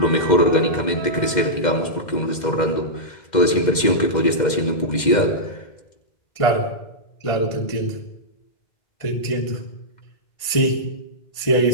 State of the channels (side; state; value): right; late; 2.1 ms